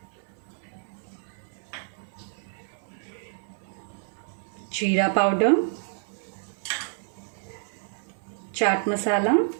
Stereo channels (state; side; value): silent; left; 59 dB below the other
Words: Jeera powder. Chaat masala.